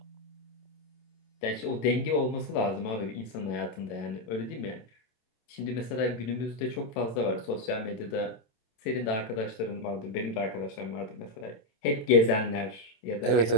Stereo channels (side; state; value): right; late; 27 ms